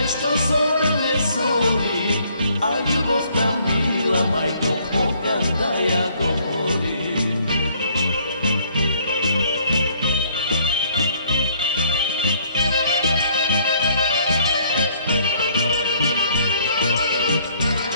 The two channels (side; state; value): both; inverted; correlation -0.63